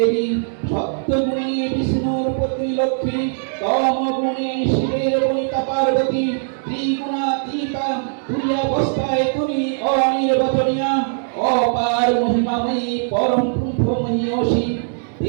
সত্যগুণী বিষ্ণুর পত্নী লক্ষ্মী, তমগুণী শিবের বনিতা পার্বতী, ত্রিগুণাতীতা তুই অবস্থায় তুমি অনির্বচনীয়া, অপার মহিমাময়ী পরম ব্রহ্মময়ী অসী।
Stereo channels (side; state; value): left; silent; digital silence